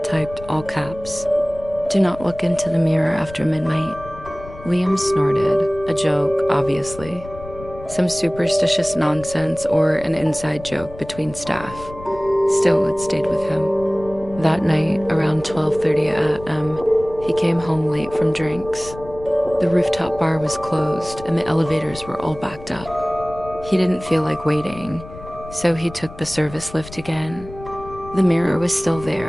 typed all caps, "Do not look into the mirror after midnight." Liam snorted, a joke, obviously. Some superstitious nonsense or an inside joke between staff. Still, it stayed with him. That night, around 12:30 a.m., he came home late from drinks. The rooftop bar was closed and the elevators were all backed up. He didn't feel like waiting, so he took the service lift again. The mirror was still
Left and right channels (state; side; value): noise; left; rumble, 16 dB below the sound